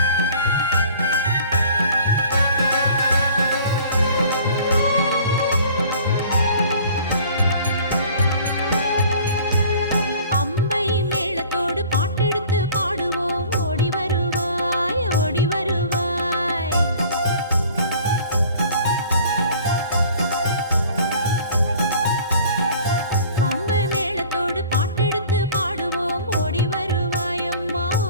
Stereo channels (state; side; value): inverted; both; correlation -0.49